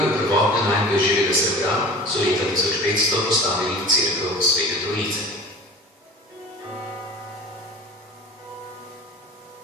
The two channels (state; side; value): normal; both; correlation 0.39